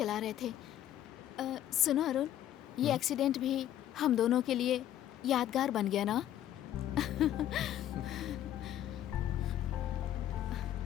रहे थे। सुनो अरुण, ये एक्सीडेंट भी हम दोनों के लिए यादगार बन गया ना?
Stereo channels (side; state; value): right; quieter; 11.9 dB